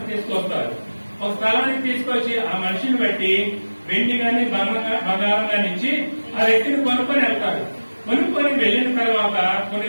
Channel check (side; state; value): both; inverted; correlation -1.00